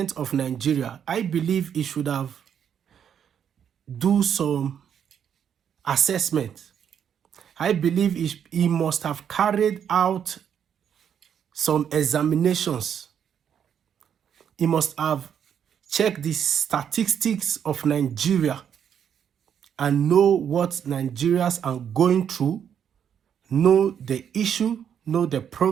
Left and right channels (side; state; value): left; quieter; 8.5 dB